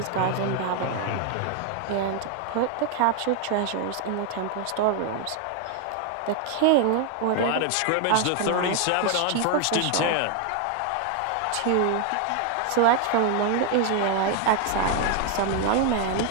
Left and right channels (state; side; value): different; both; correlation 0.00